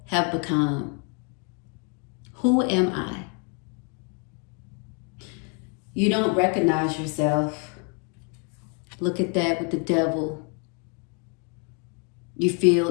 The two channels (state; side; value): quieter; right; 35.9 dB